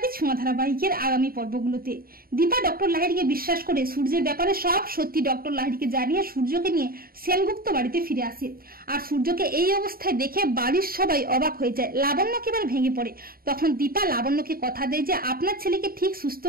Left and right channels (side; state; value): left; late; 0.43 ms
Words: ছোঁয়া ধারাবাহিকের আগামী পর্বগুলোতে। দীপা ডক্টর লাহিড়িকে বিশ্বাস করে সূর্যের ব্যাপারে সব সত্যি ডক্টর লাহিড়িকে জানিয়ে সূর্যকে নিয়ে সেনগুপ্ত বাড়িতে ফিরে আসে। আর সূর্যকে এই অবস্থায় দেখে বাড়ির সবাই অবাক হয়ে যায়। লাবণ্য একেবারে ভেঙে পড়ে। তখন দীপা লাবণ্যকে কথা দেয় যে আপনার ছেলেকে ঠিক সুস্থ